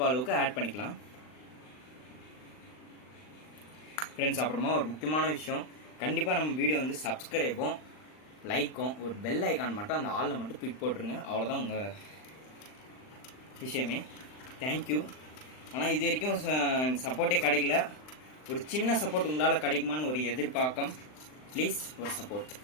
அளவுக்கு ஆட் பண்ணிக்கலாம் ஃப்ரெண்ட்ஸ். அப்புறமா ஒரு முக்கியமான விஷயம், கண்டிப்பாக நம்ம வீடியோ வந்து சப்ஸ்கிரைபும் லைக்கும் ஒரு பெல் ஐக்கான் மட்டும் அந்த ஆளில் மட்டும் தூக்கி போட்டுருங்க. அவ்வளோதான் உங்கள் விஷயமே. தேங்க்யூ. ஆனால் இது வரைக்கும் சப்போர்ட்டே கிடைக்கல. ஒரு சின்ன சப்போர்ட் உங்களால் கிடைக்குமான்னு ஒரு எதிர்பார்க்கம். ப்ளீஸ் ஒரு சப்போர்ட்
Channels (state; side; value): late; right; 39 ms